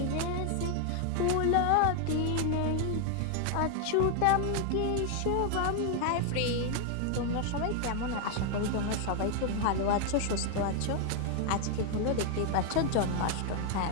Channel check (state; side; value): different; both; correlation 0.00